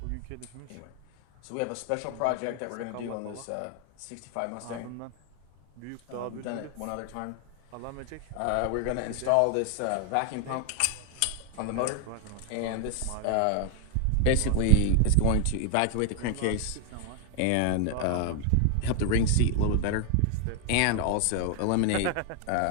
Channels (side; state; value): both; different; correlation 0.01